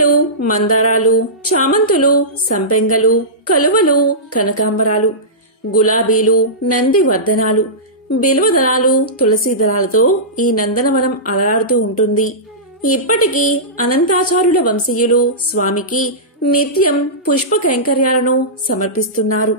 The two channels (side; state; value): both; normal; correlation -0.17